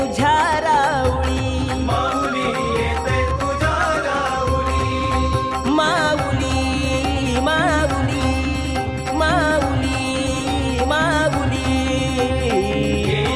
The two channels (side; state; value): both; identical; correlation 1.00